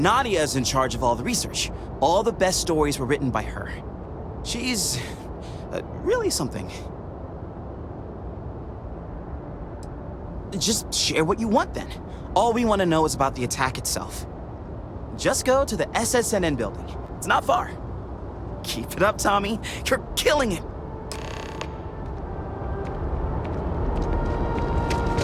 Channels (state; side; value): identical; both; correlation 1.00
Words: is in charge of all the research. All the best stories were written by her. She's really something. Just share what you want then. All we want to know is about the attack itself. Just go to the SSNN building. It's not far. Keep it up, Tommy. You're killing it.